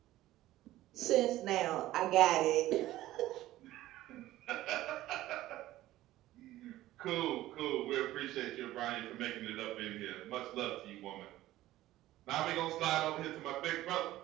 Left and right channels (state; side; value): quieter; left; 15.5 dB